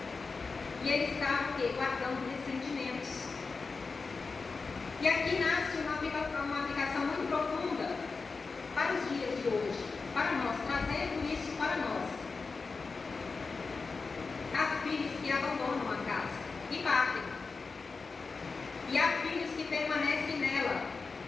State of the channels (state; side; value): quieter; right; 4.4 dB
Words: E ele estava guardando ressentimentos. E aqui nasce uma aplicação muito profunda para os dias de hoje, para nós, trazendo isso para nós. Há filhos que abandonam a casa e partem. E há filhos que permanecem nela,